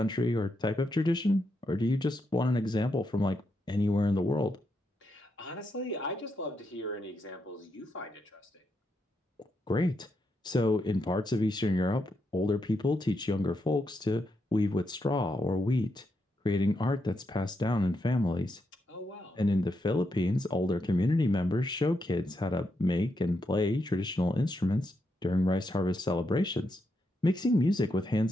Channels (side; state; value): both; normal; correlation 0.82